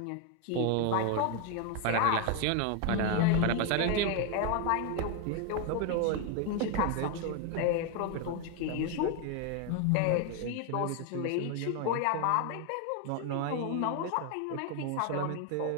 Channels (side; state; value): both; different; correlation 0.01